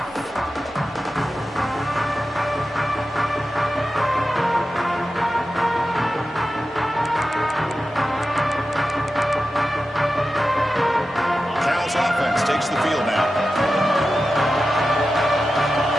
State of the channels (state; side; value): normal; both; correlation 0.92